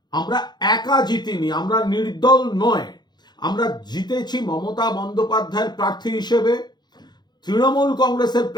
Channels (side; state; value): right; late; 0.21 ms